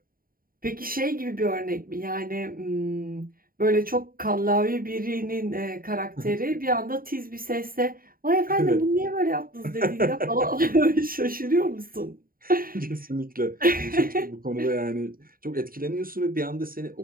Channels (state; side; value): late; left; 0.42 ms